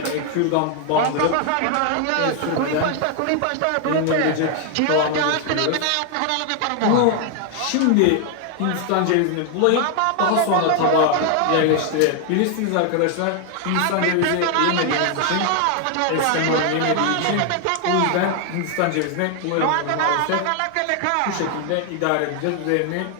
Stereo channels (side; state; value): both; different; correlation 0.00